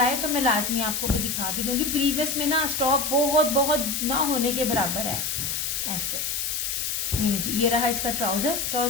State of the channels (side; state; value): left; noise; hiss, 1 dB below the sound